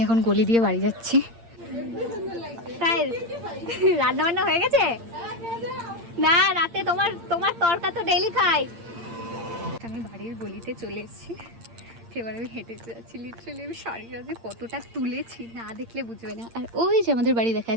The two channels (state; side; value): late; left; 8.7 ms